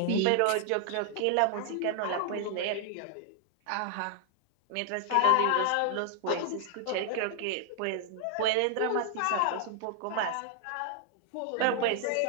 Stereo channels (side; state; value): both; different; correlation 0.00